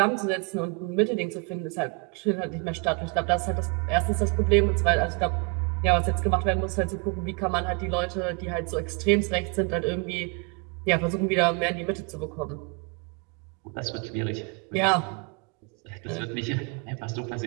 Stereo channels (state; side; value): quieter; left; 32.0 dB